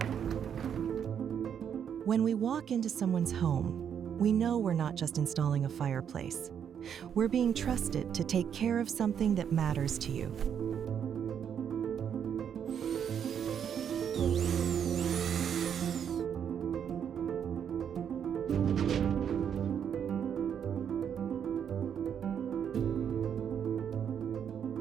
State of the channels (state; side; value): quieter; left; 8.3 dB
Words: we walk into someone's home, we know we're not just installing a fireplace. We're being trusted to take care of something that matters to you.